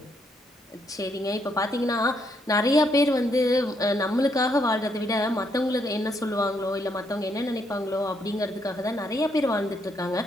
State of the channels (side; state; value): both; normal; correlation 0.74